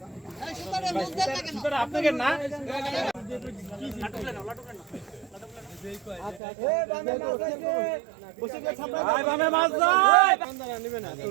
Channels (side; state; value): left; drops out; at 6.4 s